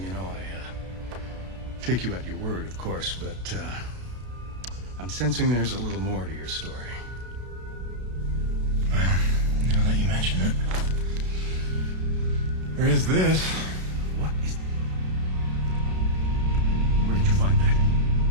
you know, I take you at your word, of course, but I'm sensing there's a little more to your story. Well, now that you mention it, there is this. What is... Where did you find that?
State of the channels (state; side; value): late; left; 32 ms